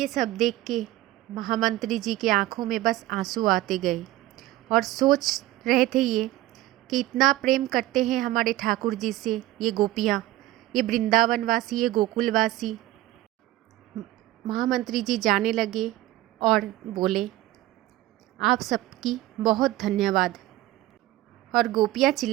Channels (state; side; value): quieter; left; 16.3 dB